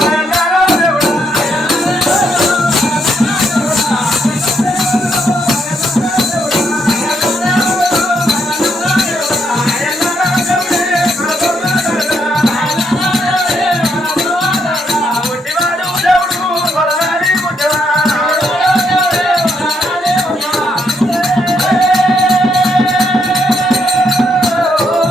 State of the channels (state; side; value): normal; both; correlation 0.76